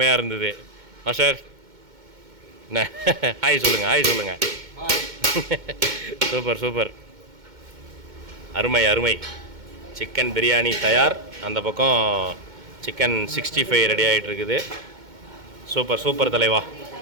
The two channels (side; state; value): left; late; 2.2 ms